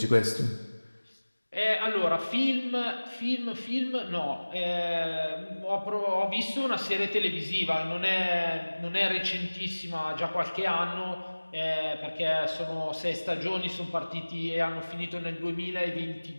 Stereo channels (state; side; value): inverted; both; correlation -1.00